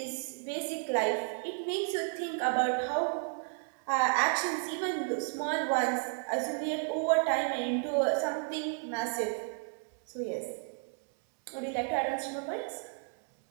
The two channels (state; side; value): silent; left; 56 dB below the other